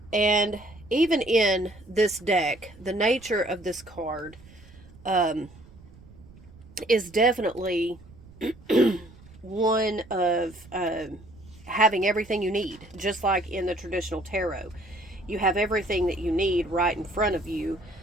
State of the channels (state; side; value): noise; right; rumble, 22 dB below the sound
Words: And even in this deck, the nature of this card is definitely one of having everything you need, just like in the traditional tarot. You have everything that you need right in front of you.